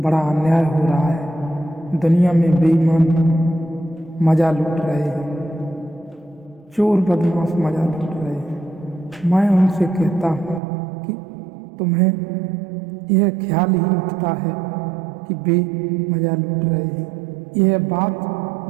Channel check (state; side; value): drops out; left; at 10.6 s